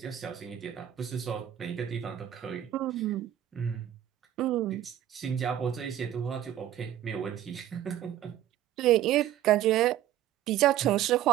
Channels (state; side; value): quieter; left; 11.7 dB